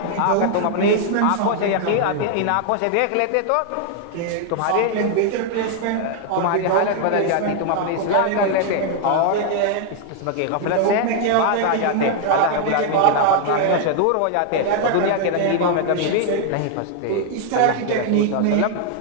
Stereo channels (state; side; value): different; both; correlation 0.00